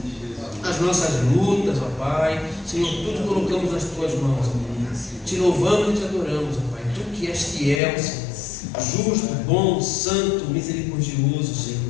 lutas, ó Pai, Senhor, tudo colocamos nas Tuas mãos, ó. Te louvamos e Te adoramos, ó Pai, Tu que és fiel, Senhor, justo, bom, santo, misericordioso,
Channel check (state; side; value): drops out; right; at 7.8 s